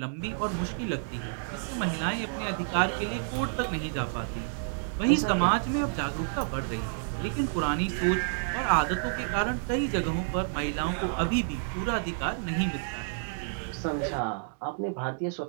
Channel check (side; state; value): left; silent; digital silence